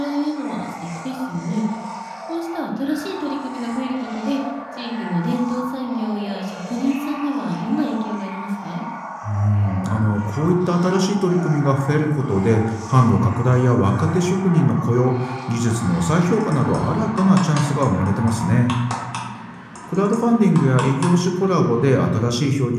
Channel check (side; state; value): both; identical; correlation 1.00